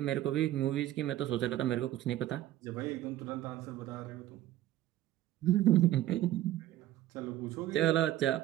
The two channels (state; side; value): quieter; left; 13.8 dB